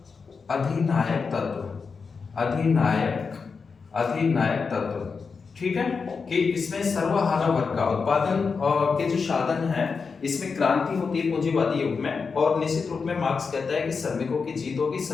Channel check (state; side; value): quieter; right; 5.2 dB